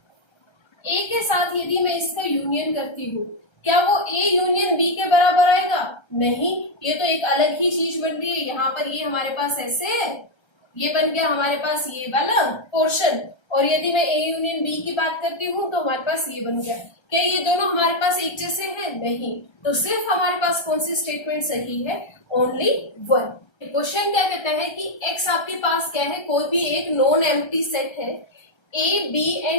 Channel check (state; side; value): late; right; 1.3 ms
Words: ए के साथ यदि मैं इसका यूनियन करती हूँ क्या वो ए यूनियन बी के बराबर आएगा, नहीं, ये तो एक अलग ही चीज बन रही है। यहाँ पर ये हमारे पास ऐसे है, ये बन गया हमारे पास ये वाला पोर्शन, और यदि मैं ए यूनियन बी की बात करती हूँ तो हमारे पास ये बन गया। क्या ये दोनों हमारे पास एक जैसे हैं, नहीं, तो सिर्फ हमारे पास कौन सी स्टेटमेंट सही है, ओनली वन। क्वेश्चन क्या कहता है कि एक्स आपके पास क्या है, कोई भी एक नॉन एम्प्टी सेट है, A B